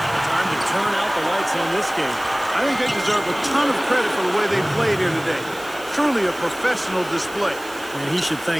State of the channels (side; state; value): right; noise; hiss, 18 dB below the sound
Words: to turn out the lights on this game. I think they deserve a ton of credit for the way they played here today. Truly a professional display. And he should